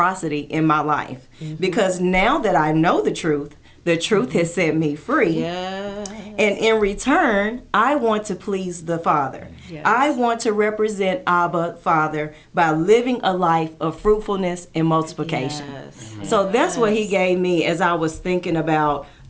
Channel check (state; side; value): identical; both; correlation 1.00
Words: in my life. Because now that I know the truth has set me free. Yes. And in return, I want to please the Father. Yes. I want to represent Abba, Father, by living a life of fruitfulness and multiplication. Yes. So that's what he gave me as I was thinking about